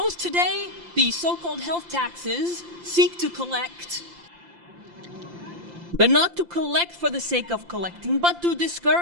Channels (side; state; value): left; late; 5.8 ms